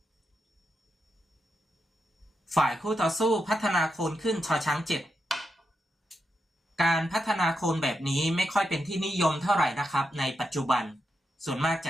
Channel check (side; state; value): both; normal; correlation 0.85